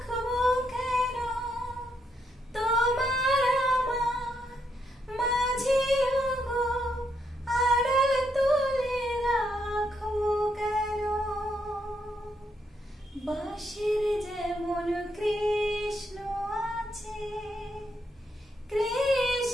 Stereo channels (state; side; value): normal; both; correlation 0.77